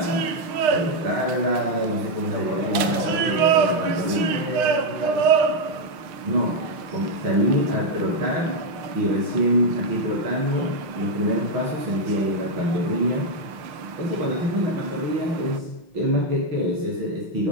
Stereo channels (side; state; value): left; late; 6.5 ms